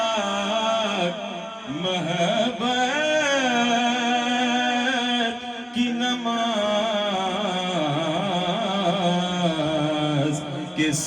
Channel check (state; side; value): identical; both; correlation 1.00